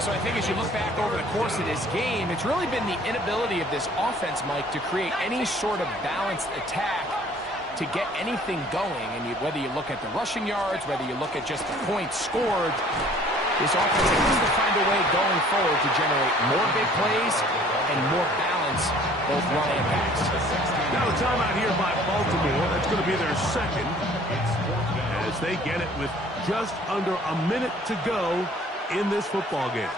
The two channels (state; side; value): normal; both; correlation 0.54